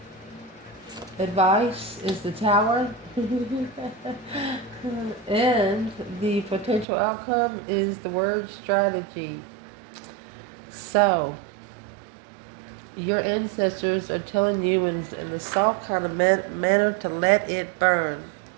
Advice is the tower. And the potential outcome is the word strategy. So, your ancestors are telling you in a soft kind of manner to let it burn.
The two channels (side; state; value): left; drops out; at 6.9 s